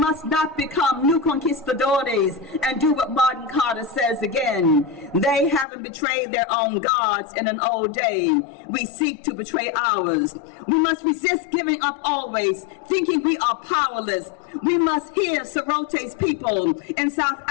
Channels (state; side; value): drops out; right; at 5.7 s